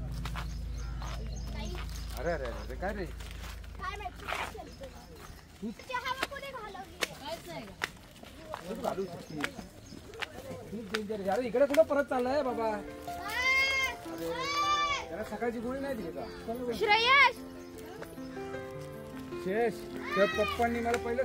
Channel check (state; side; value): identical; both; correlation 1.00